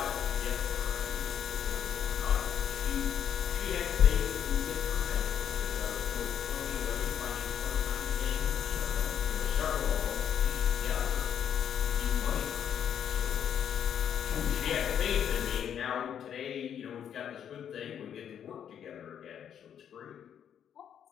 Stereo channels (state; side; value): quieter; right; 8.9 dB